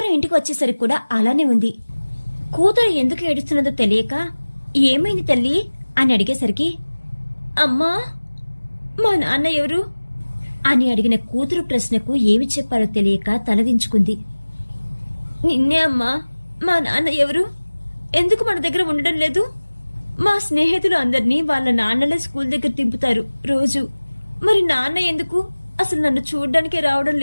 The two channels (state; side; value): inverted; both; correlation -1.00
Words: ఇంటికి వచ్చేసరికి కూడా అలానే ఉంది. కూతురు ఎందుకు ఏడుస్తున్నదో తెలియక, ఏమైంది తల్లి అని అడిగేసరికి, అమ్మా మా నాన్న ఎవరు అని అడిగిన కూతురు ప్రశ్నకు ఏమి చెప్పాలో తెలియక తలదించుకుంది. నిన్నే అమ్మా, మా నాన్న ఎవరు? ఎందుకు మన దగ్గర ఉండడం లేదు? మా స్నేహితులు అందరినీ వాళ్ళ నాన్నలే స్కూల్ దగ్గర దింపుతారు రోజు. మరి నాన్న ఎందుకు అసలు నన్ను చూడ్డానికే రావడం